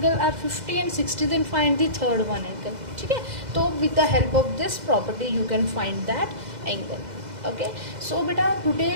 are 50 and 60 then find the third one angle, ठीक है। तो with the help of this property you can find that angle, okay। So beta today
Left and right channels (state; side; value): late; left; 2.0 ms